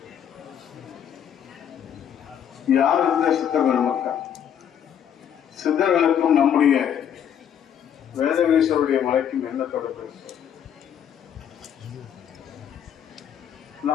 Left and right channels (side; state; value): right; quieter; 9.0 dB